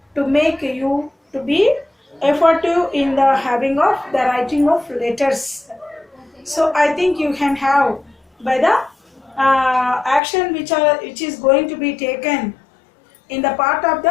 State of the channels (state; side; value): drops out; right; at 10.2 s